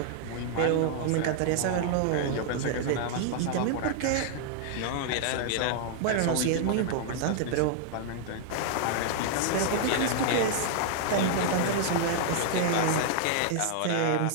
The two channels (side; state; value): both; different; correlation 0.00